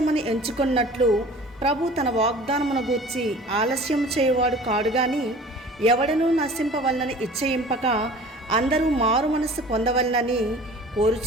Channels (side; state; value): both; normal; correlation 0.44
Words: ఎంచుకున్నట్లు ప్రభు తన వాగ్దానమును గూర్చి ఆలస్యం చేయువాడు కాడు గాని, ఎవడనూ నశింపవలనని ఇచ్చయింపక అందరూ మారు మనస్సు పొందవలనని